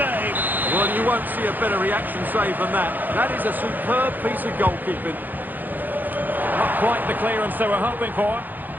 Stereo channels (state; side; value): late; left; 0.086 ms